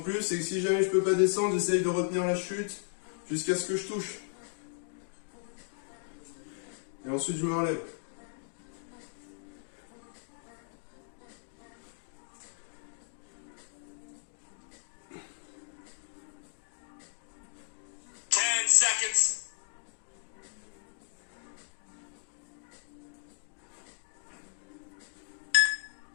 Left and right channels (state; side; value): silent; right; digital silence